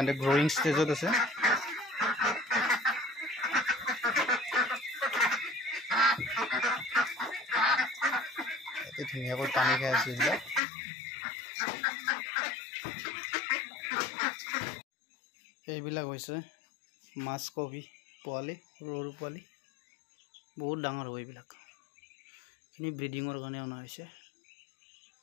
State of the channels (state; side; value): drops out; right; at 10.6 s